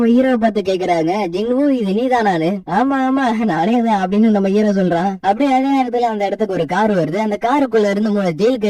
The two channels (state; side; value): identical; both; correlation 1.00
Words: ஹீரோவை பார்த்து கேக்குறாங்க, ஜிங்கு இது நீதானானு? ஆமா ஆமா நானே தான் அப்படின்னு நம்ம ஹீரோ சொல்றான். அப்படியே அதே நேரத்துல அந்த இடத்துக்கு ஒரு கார் வருது. அந்த காருக்குள்ள இருந்து 3 ஜெயில்